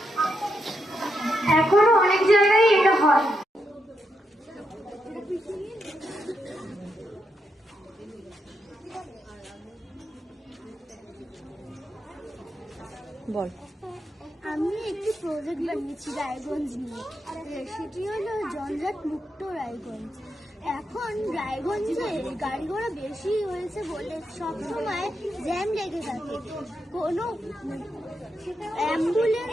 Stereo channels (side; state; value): both; normal; correlation 0.82